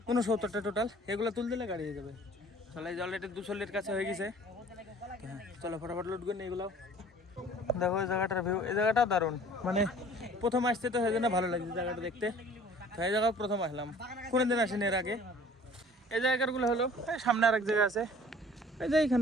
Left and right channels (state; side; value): normal; both; correlation 0.50